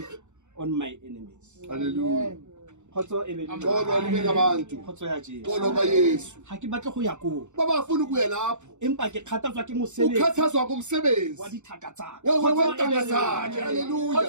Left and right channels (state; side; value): late; left; 0.84 ms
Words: on my enemies. Hallelujah. Khotso e be le lona. Xolo libe nabantu. Khotso ya Jesu. Xolo ka Yesu. Ha ke batle go ya ko. Baba afuna ukuya lapho. Empa ke kgathatswa ke mosebetsi. Ukhathazwa ngomsebenzi. Wa dithaka tsa. Wentanga zakhe. Hallelujah.